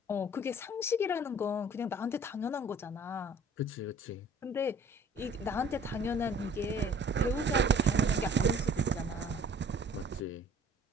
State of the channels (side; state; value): both; normal; correlation 0.52